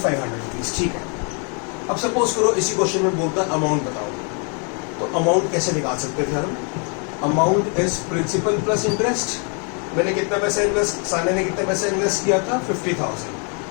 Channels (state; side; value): quieter; right; 38.9 dB